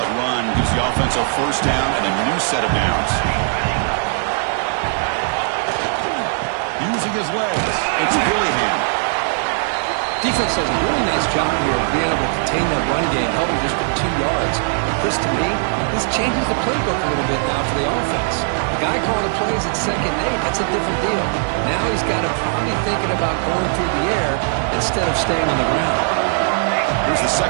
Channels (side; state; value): left; silent; 66 dB below the other